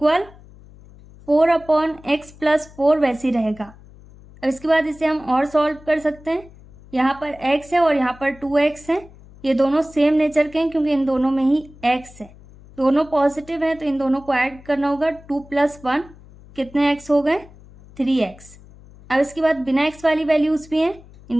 4/x+4 वैसे ही रहेगा। अब इसके बाद इसे हम और सॉल्व कर सकते हैं। यहाँ पर x है और यहाँ पर 2x है। ये दोनों सेम नेचर के हैं क्योंकि इन दोनों में ही x है। दोनों पॉजिटिव हैं तो इन दोनों को ऐड करना होगा। 2 + 1 कितने x हो गए? 3x। अब इसके बाद बिना x वाली वैल्यूज़ भी हैं,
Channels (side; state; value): left; noise; hum, 22 dB below the sound